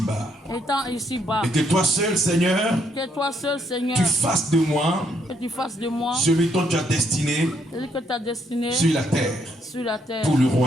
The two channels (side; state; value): both; normal; correlation 0.73